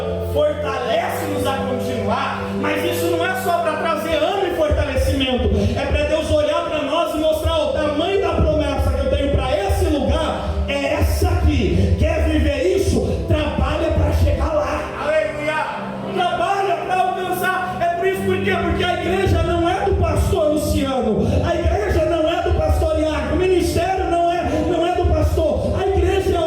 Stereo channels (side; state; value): both; identical; correlation 1.00